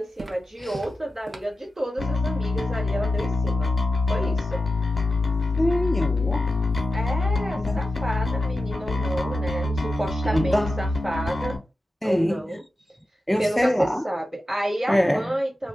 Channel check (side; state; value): both; normal; correlation 0.92